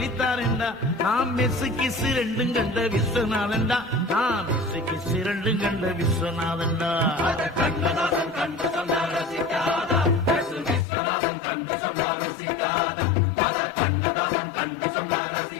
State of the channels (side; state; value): right; drops out; at 10.9 s